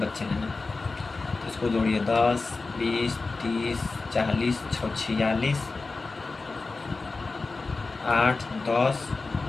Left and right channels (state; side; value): quieter; right; 3.8 dB